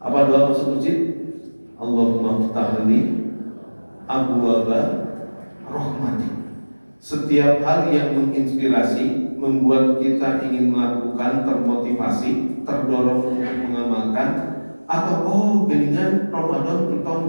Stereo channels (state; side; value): inverted; both; correlation -1.00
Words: Apa doa masuk masjid? Allahumma ftahli abwaaba rahmatik. Setiap hal yang menginspirasi, membuat kita ingin melakukan, termotivasi, terdorong untuk mengamalkan, Atau geningan Ramadan entong